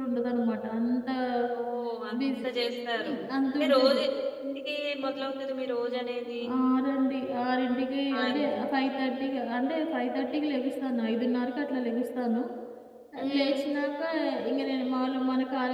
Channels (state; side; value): identical; both; correlation 1.00